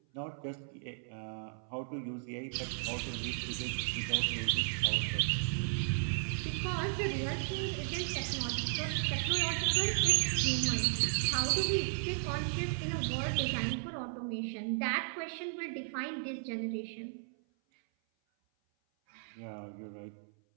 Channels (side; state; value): left; silent; 55 dB below the other